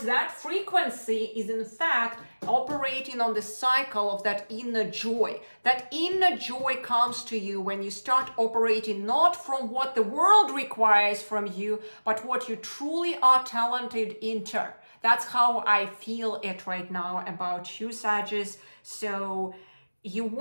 that frequency is in fact operating on the cycle of that inner joy. That inner joy comes to you when you start operating not from what the world requires from you, but what you truly are talented into. That's how I feel it right now about you, Sagittarius. So you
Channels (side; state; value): both; inverted; correlation -1.00